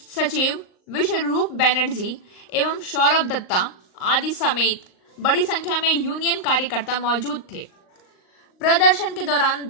सचिव विश्वरूप बैनर्जी एवं सौरभ दत्ता आदि समेत बड़ी संख्या में यूनियन कार्यकर्ता मौजूद थे। प्रदर्शन के दौरान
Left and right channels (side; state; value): right; late; 38 ms